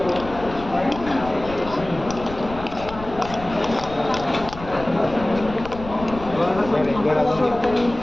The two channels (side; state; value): left; noise; rumble, 13 dB below the sound